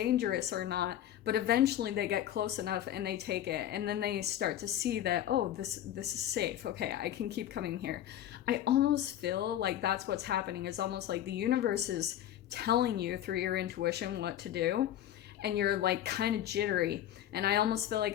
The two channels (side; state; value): right; quieter; 11.7 dB